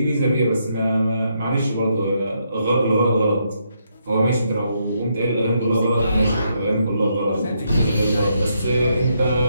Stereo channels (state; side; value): inverted; both; correlation -0.77